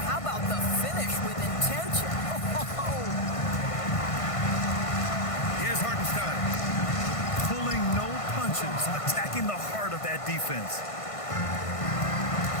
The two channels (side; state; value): right; late; 1.5 ms